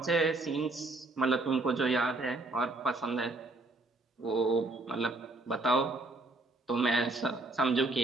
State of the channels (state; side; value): quieter; left; 3.0 dB